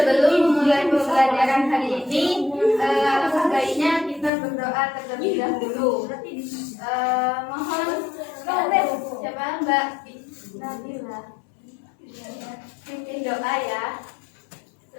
memulai pembelajaran hari ini, alangkah baiknya kita berdoa terlebih dahulu. Mohon siapa Mbak Nabila pimpin doa ya.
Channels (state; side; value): drops out; right; at 4.3 s